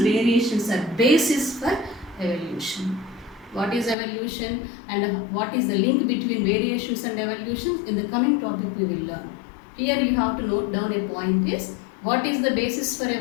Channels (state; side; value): drops out; right; at 4.0 s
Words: variations are basis for evolution. What is evolution and what is the link between variations and evolution? In the coming topic we will learn. Here you have to note down a point is, what is the basis for